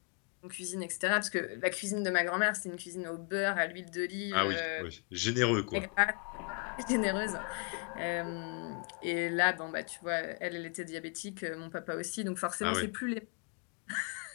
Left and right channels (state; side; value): quieter; right; 35.4 dB